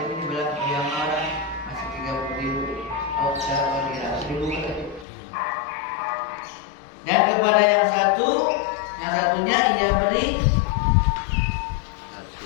ini bilang yang orang masih 30.000. Oh, sekarang 300.000. Dan kepada yang satunya ia beri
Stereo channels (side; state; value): right; drops out; at 5.1 s